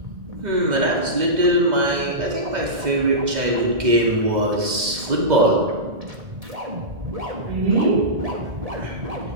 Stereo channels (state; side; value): late; left; 2.0 ms